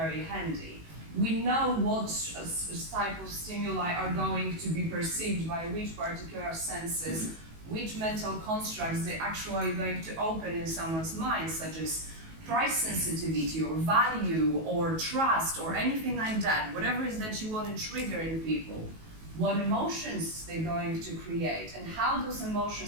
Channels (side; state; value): left; late; 19 ms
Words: handy. We know what type of stimuli are going to be perceived by which particular senses, which mental constructs they're actually going to open in someone's mind, such as price sensitivity or value or trust or anything like that, whatever it is that you want to trigger in people, what emotions they're going to create and how those